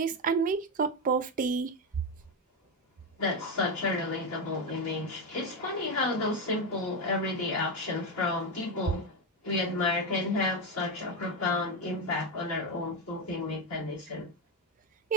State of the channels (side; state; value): both; normal; correlation 0.10